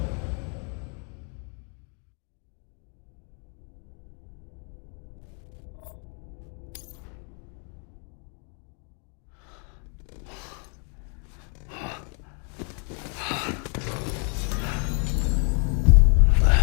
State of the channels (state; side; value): quieter; right; 40.0 dB